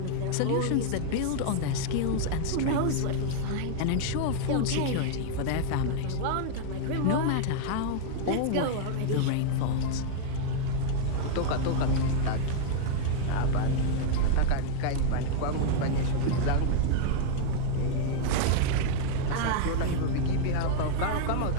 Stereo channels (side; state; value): both; different; correlation 0.00